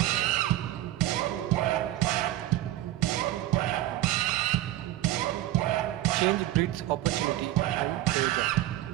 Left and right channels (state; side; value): quieter; left; 14.8 dB